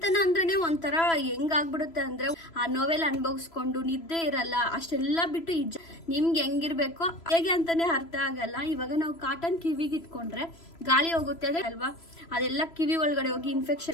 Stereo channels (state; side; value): late; right; 3.0 ms